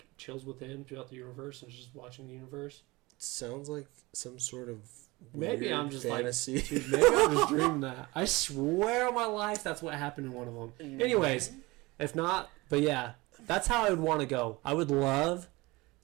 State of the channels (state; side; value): quieter; left; 22.5 dB